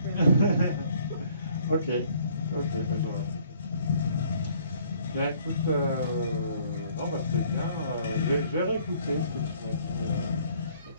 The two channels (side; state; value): both; inverted; correlation -0.60